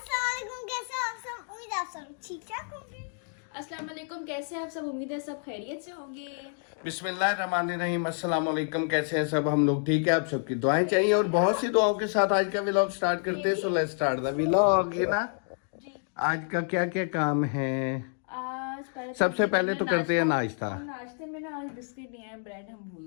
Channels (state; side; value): silent; right; 59 dB below the other